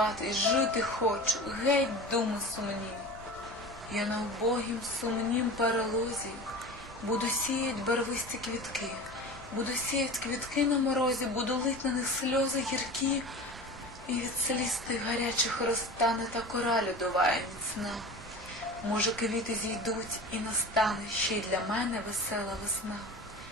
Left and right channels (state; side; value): normal; both; correlation 0.34